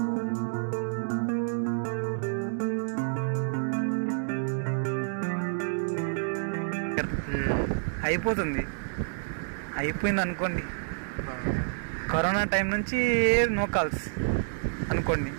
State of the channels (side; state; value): left; silent; digital silence